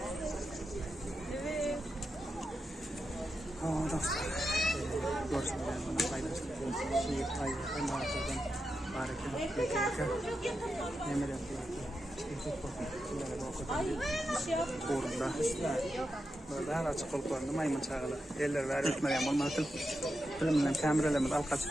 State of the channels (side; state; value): both; normal; correlation 0.88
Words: Evet. Aa dostlar. Görsün bana paylaştım. Şehir payı. Ben de artırdım. Harika. Yemin ederim. Ay bir şey yapma. Uğrunda. Burada her açık oluklarında maymun çağılı. Eller ver etmeyen olmadı. Filmden kameralarımız alka